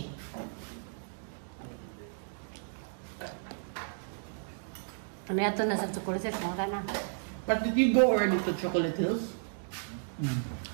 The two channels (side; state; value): left; silent; digital silence